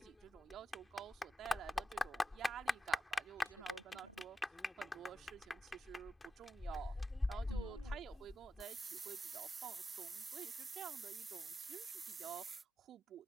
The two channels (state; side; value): normal; both; correlation 0.89